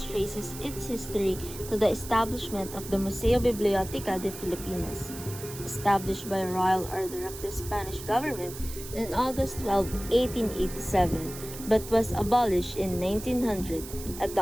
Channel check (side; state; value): right; noise; hiss, 12 dB below the sound